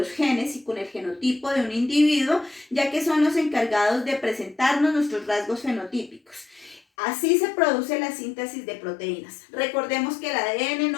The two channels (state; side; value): drops out; right; at 6.8 s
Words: genes y con el genotipo de un individuo, ya que son los encargados de presentarnos nuestros rasgos fenotípicos. Así se produce la síntesis de proteínas. Recordemos que el ADN